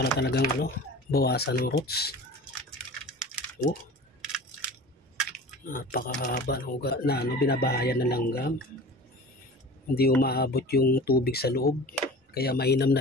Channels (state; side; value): normal; both; correlation 0.38